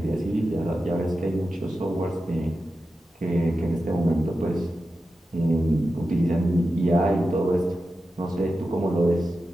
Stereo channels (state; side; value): normal; both; correlation 0.91